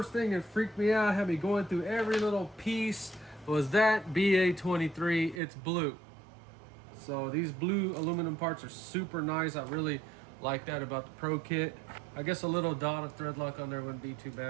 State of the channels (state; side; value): drops out; left; at 5.4 s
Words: thing that freaked me out, had me going through every little piece, was that BA23. It's blue. So these blue aluminum parts are super nice. I really like that about the Pro kit. I guess a little dot of thread lock on there wouldn't be too